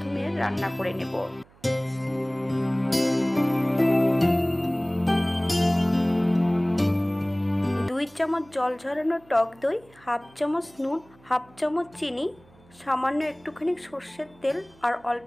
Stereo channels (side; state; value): right; noise; hum, 28 dB below the sound